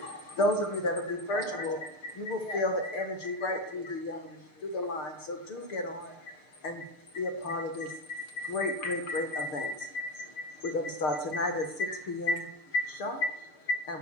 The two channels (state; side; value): late; right; 6.6 ms